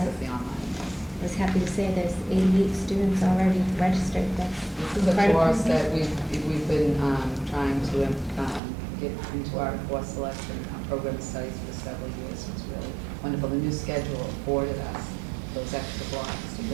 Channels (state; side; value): drops out; left; at 8.6 s